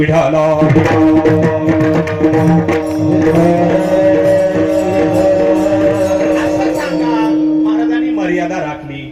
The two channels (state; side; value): identical; both; correlation 1.00